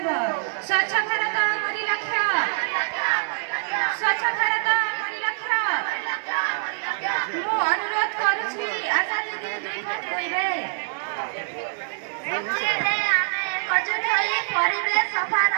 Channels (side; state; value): left; silent; digital silence